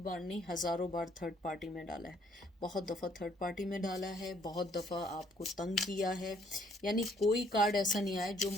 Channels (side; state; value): both; normal; correlation 0.64